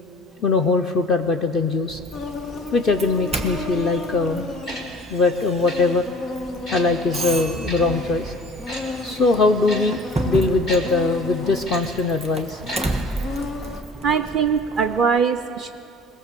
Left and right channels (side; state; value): both; normal; correlation 0.46